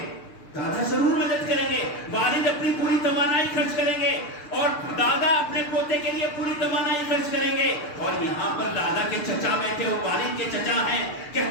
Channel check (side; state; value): right; late; 6.8 ms